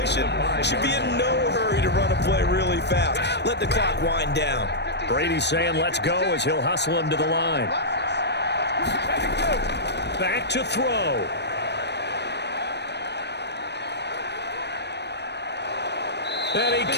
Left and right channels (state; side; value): late; right; 0.50 ms